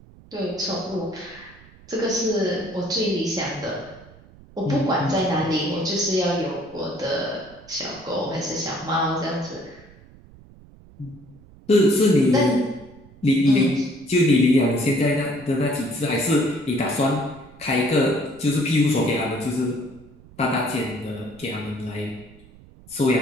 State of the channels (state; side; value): noise; right; rumble, 23 dB below the sound